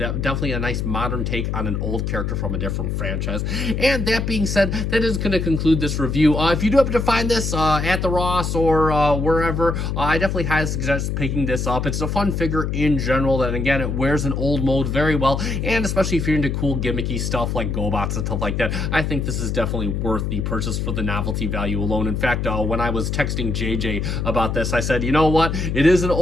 nice modern take on an old character from a different franchise. And that being said, that is going to conclude this review. If you do happen to find this at the Ross or wherever, I definitely highly suggest picking this up. It's a fun figure in general, that again, it wears an old mold very well, and especially if you're into cool gimmicky stuff like GoBots and stuff like that, I think this is definitely worth the purchase for the novelty value alone. In fact, when I was texting JJ about this, I said, you know what, it is an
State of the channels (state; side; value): noise; left; hum, 1 dB below the sound